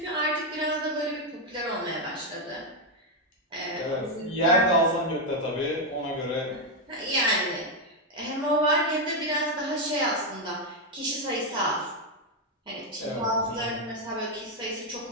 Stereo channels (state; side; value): normal; both; correlation 0.04